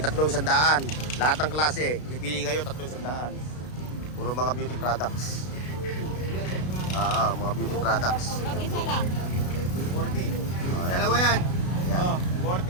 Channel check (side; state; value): right; late; 33 ms